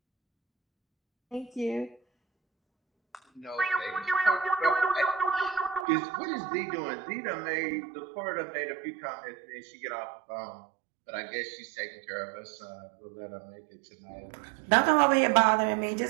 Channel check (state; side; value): drops out; left; at 5.9 s